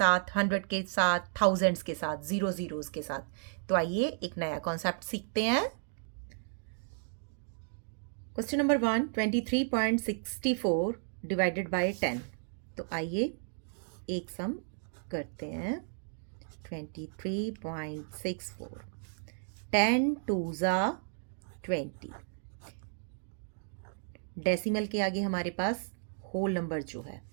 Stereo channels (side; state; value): left; silent; digital silence